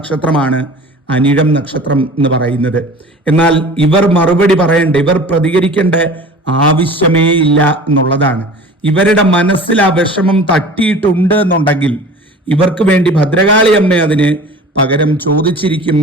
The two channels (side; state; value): both; normal; correlation 0.41